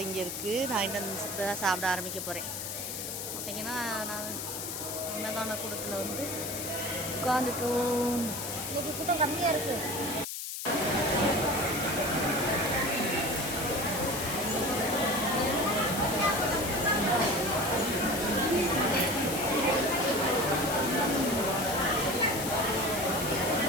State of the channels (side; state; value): left; noise; hiss, 5 dB below the sound